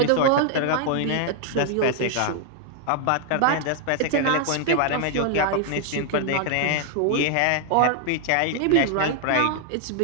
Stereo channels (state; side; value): different; both; correlation 0.00